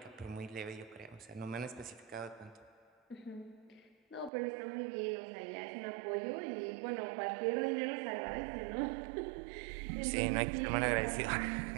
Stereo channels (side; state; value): left; drops out; at 4.3 s